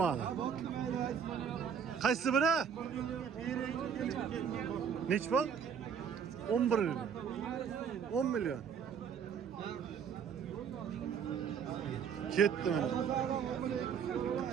Qaysi biri? Nechi pul? 11 million. 10 million. Ketdi mana.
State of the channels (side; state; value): left; quieter; 7.3 dB